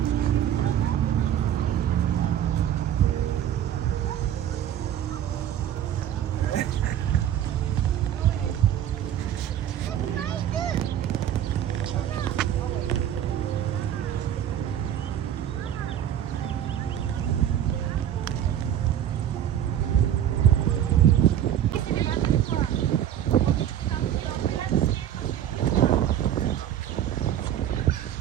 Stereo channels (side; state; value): left; quieter; 10.6 dB